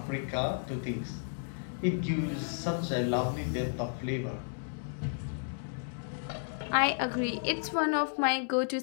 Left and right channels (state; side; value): silent; right; digital silence